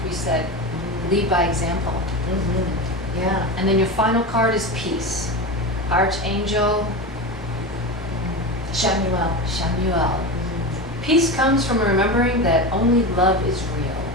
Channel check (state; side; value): normal; both; correlation 0.23